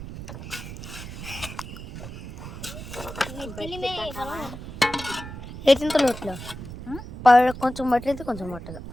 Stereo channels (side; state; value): right; noise; rumble, 11 dB below the sound